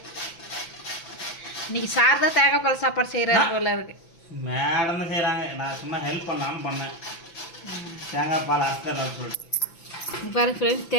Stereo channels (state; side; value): late; right; 5.9 ms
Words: இன்றைக்கி சார் தான் தேங்காய் பால் சாப்பாடு செய்கிறாரு போல இருக்குது. மேடம் தான் செய்கிறாங்க, நான் சும்மா ஹெல்ப் பண்ணலான்னு பண்ணேன். தேங்காய் பால் அரைச்சிடலாம் சொல்லிட்டு. பாருங்க ஃப்ரெண்ட்ஸ்,